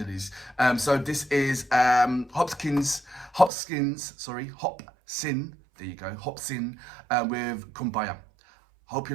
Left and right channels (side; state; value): left; drops out; at 3.5 s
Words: So this is Hopsin. There you go, Hopsin with Kumbaya. Hope you